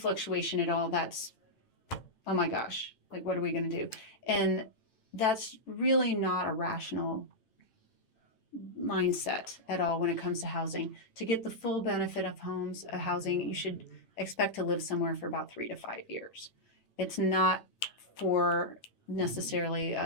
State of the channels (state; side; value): late; right; 9.0 ms